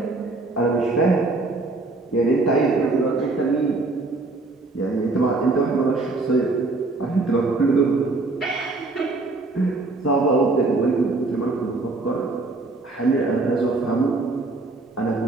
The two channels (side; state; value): left; quieter; 3.3 dB